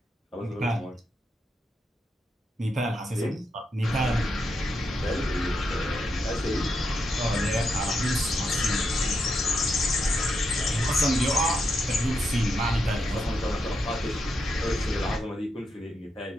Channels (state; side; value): normal; both; correlation 0.82